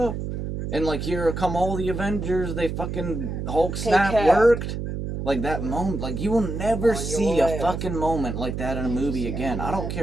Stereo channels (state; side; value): noise; right; hum, 4 dB below the sound